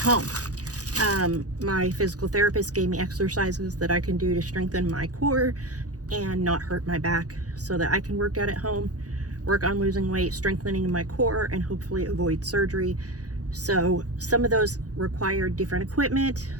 home. My physical therapist gave me exercises that I can do to strengthen my core and not hurt my back so that I can work out at home, work on losing weight, strengthening my core, and hopefully avoid surgery. So some of those required different equipment.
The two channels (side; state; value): left; late; 0.67 ms